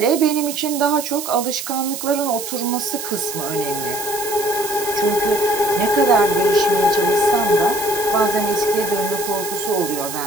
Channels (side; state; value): right; noise; hiss, 8 dB below the sound